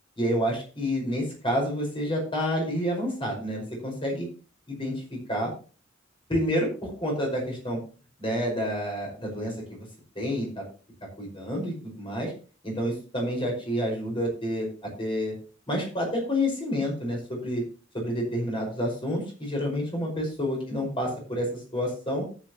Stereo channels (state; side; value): normal; both; correlation 0.50